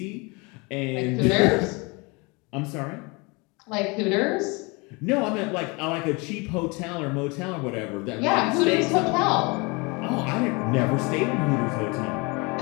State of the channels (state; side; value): quieter; right; 27.9 dB